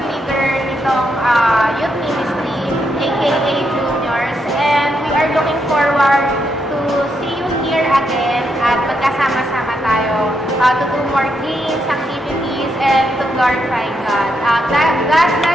leader nitong youth ministry, aka Juniors, and we are looking forward to see you here again at magkasama-sama tayo to do more games, activities, and to glorify God. God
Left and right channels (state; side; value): normal; both; correlation 0.80